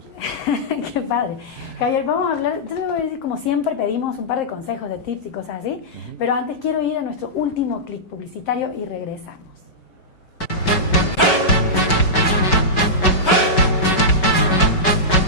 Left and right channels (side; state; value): right; late; 5.3 ms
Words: Qué padre. Javier, vamos a hablar, yo te voy a decir, como siempre pedimos un par de consejos, de tips y cosas así, pero antes quiero ir a nuestro último clic publicitario y regresamos.